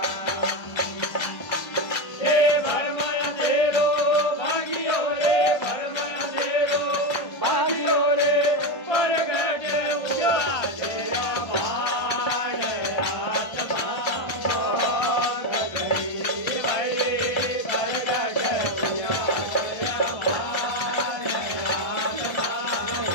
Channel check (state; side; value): late; right; 1.6 ms